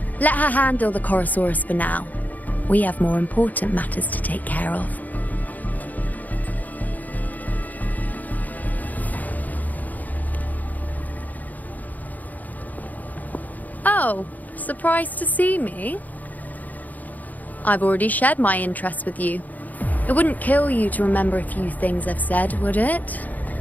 Let her handle the Chorosaurus for now. We have more important matters to take care of. Oh, surprised to see me? I've already shared my interest with you. It wouldn't kill you to remember a few things I've said, would it?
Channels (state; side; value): late; right; 0.080 ms